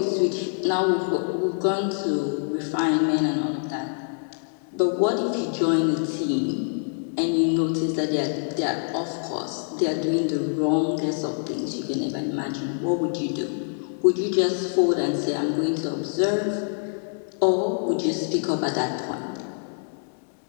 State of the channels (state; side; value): silent; right; digital silence